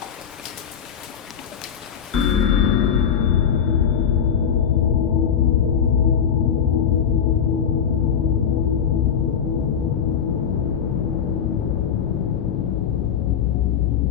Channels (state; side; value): quieter; right; 7.9 dB